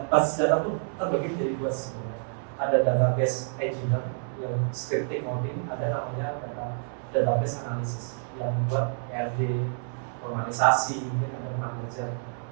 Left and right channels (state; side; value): silent; left; 59 dB below the other